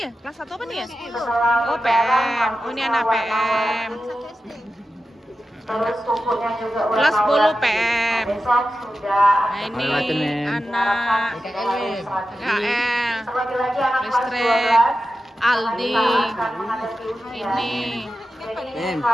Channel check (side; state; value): both; normal; correlation 0.92